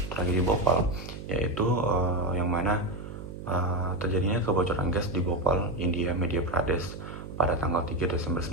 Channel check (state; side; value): noise; right; hum, 11 dB below the sound